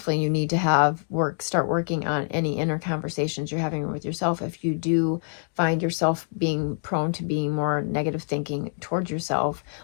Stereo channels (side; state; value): right; silent; digital silence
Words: you need to start working on any inner conversations you're having with yourself. If you do find yourself being prone to being more negative thinking towards yourself